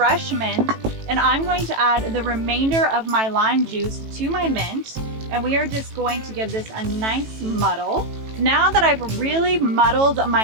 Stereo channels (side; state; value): left; late; 18 ms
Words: mint, and I'm going to add the remainder of my lime juice to my mint, and we are just going to give this a nice muddle. Now that I've really muddled